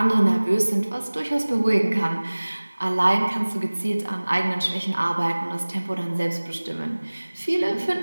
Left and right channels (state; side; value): inverted; both; correlation -1.00